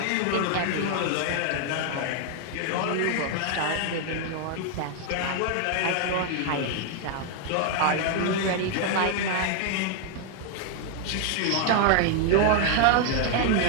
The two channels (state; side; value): different; both; correlation 0.00